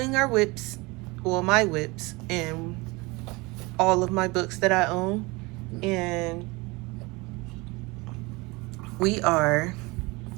our whips, well, my whips, and all of my books that I own. And I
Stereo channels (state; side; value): quieter; left; 24.6 dB